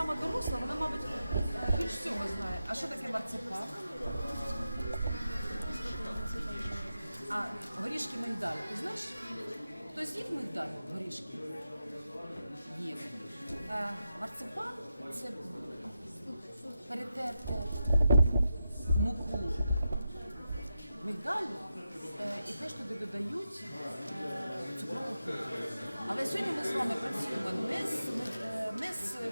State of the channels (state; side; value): inverted; both; correlation -0.88